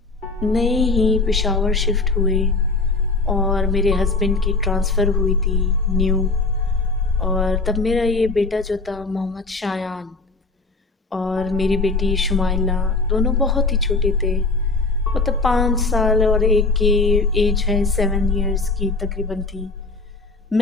नए ही पेशावर शिफ्ट हुए और मेरे हस्बैंड की ट्रांसफ़र हुई थी न्यू, और तब मेरा ये बेटा जो था मोहम्मद शायान और मेरी बेटी शुमाइला दोनों बहुत ही छोटे थे, मतलब 5 साल और एक की एज है 7 इयर्स की तकरीबन थी।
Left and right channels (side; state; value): right; quieter; 3.6 dB